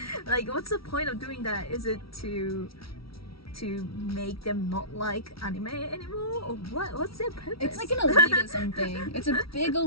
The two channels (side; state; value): right; late; 0.75 ms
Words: Like, what's the point of doing that? Is it to make them not like anime anymore, or what's their purpose? It's like an elitism thing. It's a big